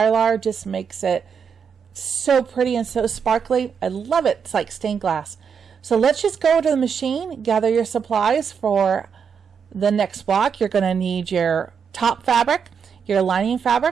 just makes it so pretty and so sparkly. I love it. It's like stained glass. So let's just go to the machine, gather your supplies for the next block. You're going to need your top fabric, your lining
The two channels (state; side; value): quieter; left; 6.7 dB